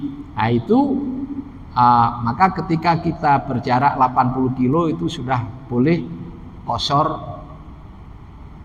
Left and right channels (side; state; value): both; identical; correlation 1.00